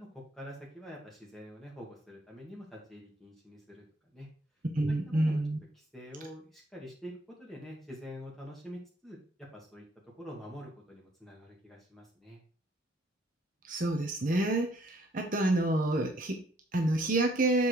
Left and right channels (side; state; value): both; normal; correlation 0.64